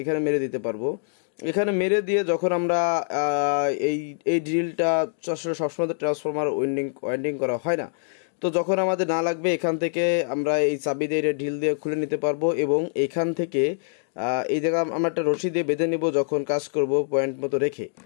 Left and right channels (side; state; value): right; silent; digital silence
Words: মেরে দিতে পারবো। এখানে মেরে দিয়ে যখন আমরা এই ড্রিলটা সবসময় ট্রান্সফরমার ওয়াইন্ডিং করা হয় না, তো যখন আমাদের না লাগবে এখান থেকে আমরা এই চাবি দিয়ে ঢিল দিয়ে খুলে নিতে পারবো এবং এখান থেকে এই জায়গা আমরা একটা রশি দিয়ে বেঁধে নিব যখন কাজ করব পয়েন্ট মতো রেখে।